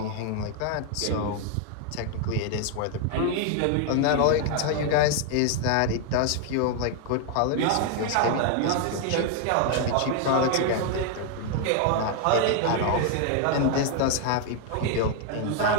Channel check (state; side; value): different; both; correlation 0.00